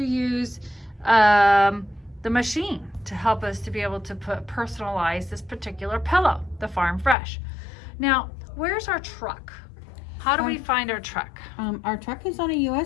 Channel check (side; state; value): right; drops out; at 7.2 s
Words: use the machine to help us to be able to personalize this particular pillow, the Farm Fresh. Now, where's our truck? How do we find our truck? Our truck is on a